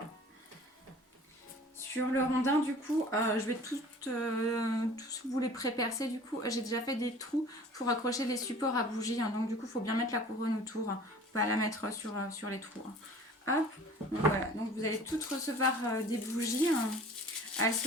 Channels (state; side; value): normal; both; correlation 0.46